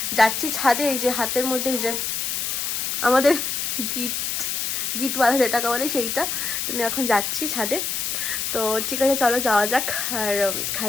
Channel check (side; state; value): left; noise; hiss, 1 dB below the sound